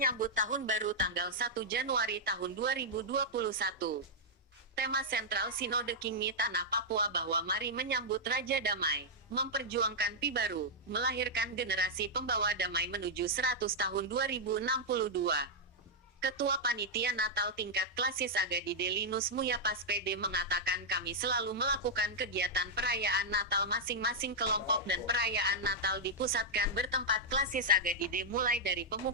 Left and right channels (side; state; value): both; normal; correlation -0.05